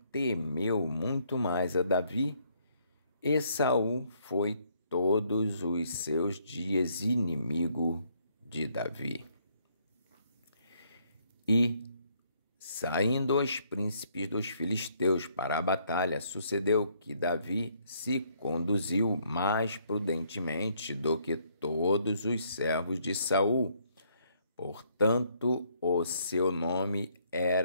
temeu muito mais a Davi, e Saul foi todos os seus dias inimigo de Davi. E, saindo os príncipes dos filisteus para a batalha, sucedeu que Davi se conduziu mais prudentemente do que todos os servos de Saul. Portanto, o seu nome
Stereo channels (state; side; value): inverted; both; correlation -0.69